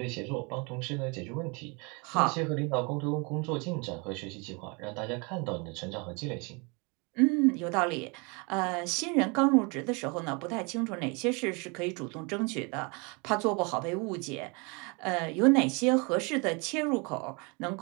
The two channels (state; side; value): quieter; left; 30.5 dB